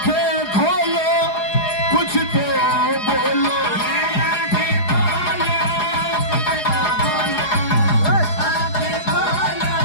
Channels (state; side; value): late; right; 4.8 ms